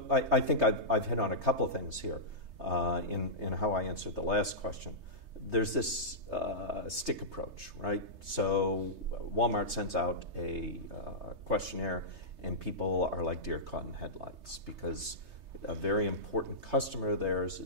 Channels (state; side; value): late; left; 3.3 ms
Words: I think I've hit on a couple of things here in how I answered the last question. There's this stick approach, right? So Walmart sends out a questionnaire, and people are like deer caught in headlights because a very important customer of theirs